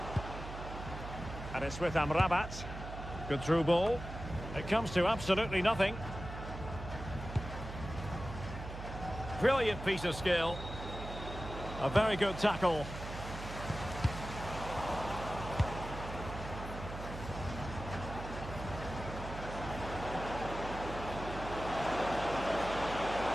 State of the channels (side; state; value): right; noise; hum, 9 dB below the sound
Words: And it's with Amrabat. Good through ball. It comes to absolutely nothing. Brilliant piece of skill. A very good tackle.